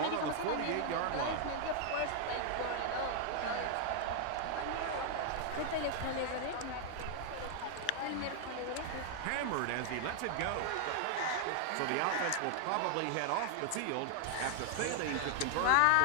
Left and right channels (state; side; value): different; both; correlation 0.00